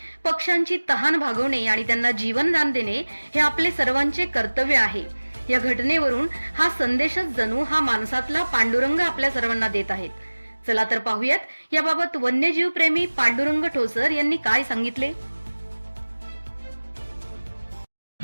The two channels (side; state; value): both; inverted; correlation -1.00